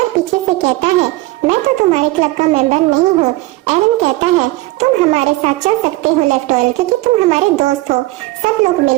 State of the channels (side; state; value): left; quieter; 19.7 dB